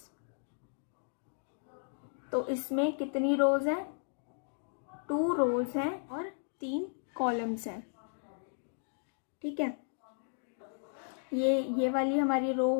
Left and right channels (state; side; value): silent; right; digital silence